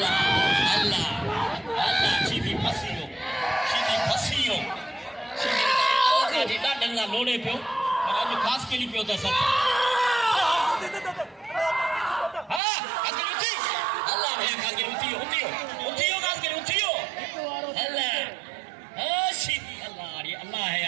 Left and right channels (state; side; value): drops out; left; at 12.6 s